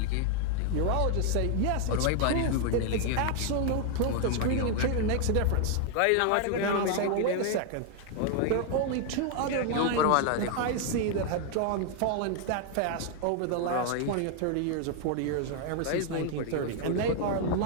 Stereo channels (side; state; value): both; different; correlation 0.00